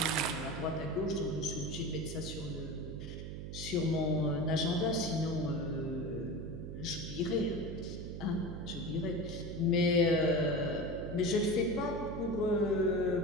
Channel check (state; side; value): noise; right; hum, 7 dB below the sound